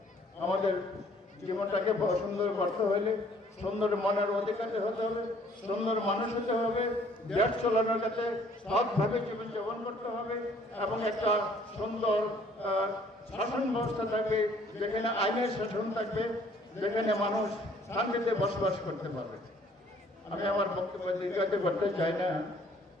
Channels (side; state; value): both; normal; correlation 0.59